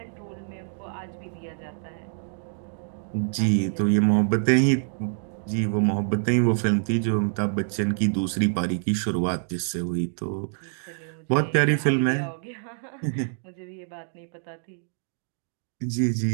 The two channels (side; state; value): left; silent; digital silence